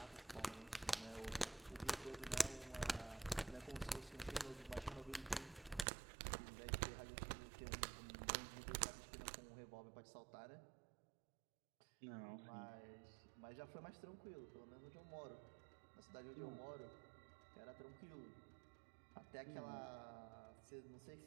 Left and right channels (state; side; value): drops out; left; at 5.9 s